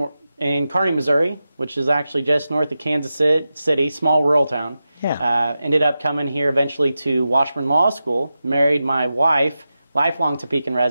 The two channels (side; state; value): both; inverted; correlation -0.92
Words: in Kearney, Missouri, which is actually just north of Kansas City, small rural town. Yeah. Ended up coming here eventually to Washburn Law School, married my wife, lifelong Topekan